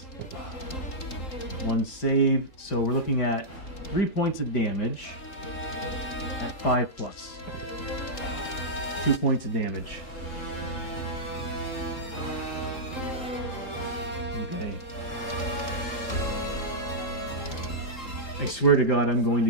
1 save. So we're looking at 3 points of damage at 5 plus. 2 points of damage. Okay. I swear to God, I'm going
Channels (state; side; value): late; right; 3.8 ms